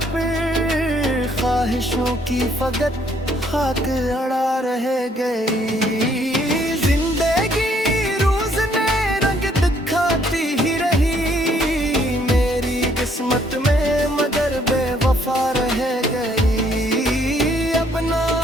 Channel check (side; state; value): both; normal; correlation 0.66